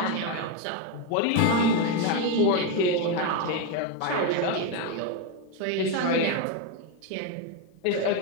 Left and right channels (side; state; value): both; different; correlation 0.02